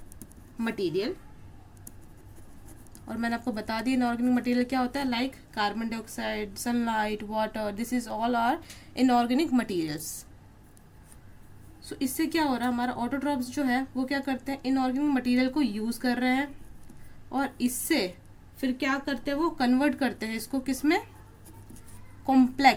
मटेरियल। और मैंने आपको बता दिया इनऑर्गेनिक मटेरियल क्या होता है, like carbon dioxide, sunlight, water, this is all are inorganic materials. So इससे क्या हो रहा है, हमारा ऑटोट्रॉप्स जो है वो क्या करते हैं, इनऑर्गेनिक मटेरियल को यूज़ कर रहे हैं और इससे फिर क्या करते हैं, वो कन्वर्ट करते हैं इसको किस में,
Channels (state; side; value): identical; both; correlation 1.00